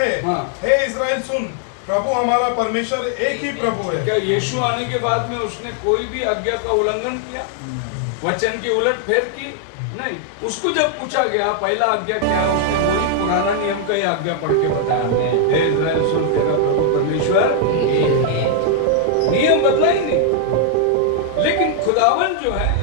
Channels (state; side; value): different; both; correlation 0.00